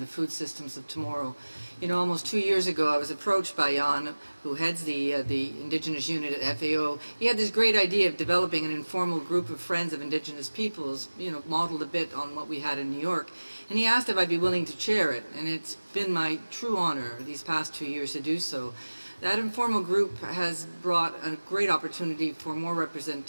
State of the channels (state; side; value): inverted; both; correlation -1.00